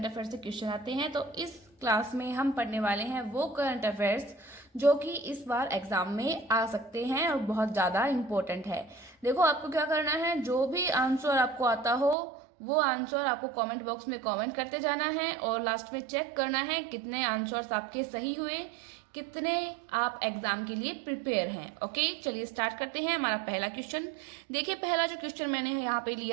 अफेयर्स से क्वेश्चन आते हैं। तो इस क्लास में हम पढ़ने वाले हैं वो करंट अफेयर्स जो कि इस बार एग्जाम में आ सकते हैं और बहुत ज़्यादा इम्पोर्टेंट है। देखो, आपको क्या करना है, जो भी आंसर आपको आता हो वो आंसर आपको कमेंट बॉक्स में कमेंट करते जाना है और लास्ट में चेक करना है कितने आंसर्स आपके सही हुए, कितने आप एग्जाम के लिए प्रिपेयर हैं। ओके, चलिए स्टार्ट करते हैं। हमारा पहला क्वेश्चन देखिए, पहला जो क्वेश्चन मैंने यहाँ पे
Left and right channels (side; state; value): left; drops out; at 12.2 s